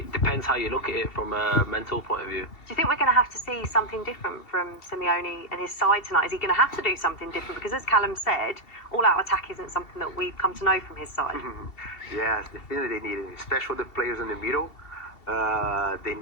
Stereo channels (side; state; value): right; late; 2.7 ms